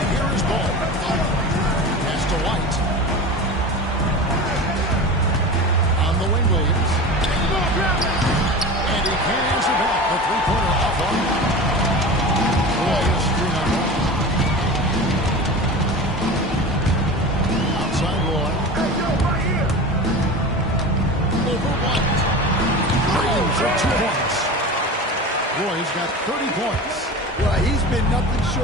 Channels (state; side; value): normal; both; correlation 0.32